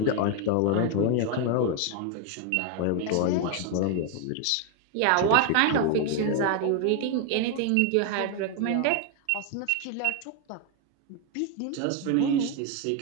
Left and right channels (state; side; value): different; both; correlation 0.01